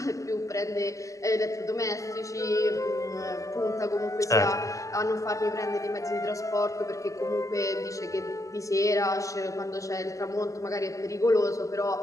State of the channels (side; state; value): right; late; 0.16 ms